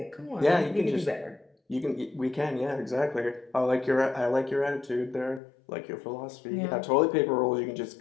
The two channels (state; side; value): drops out; right; at 5.4 s